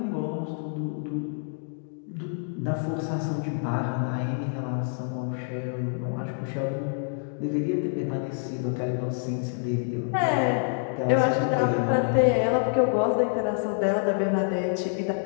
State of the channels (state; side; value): silent; right; digital silence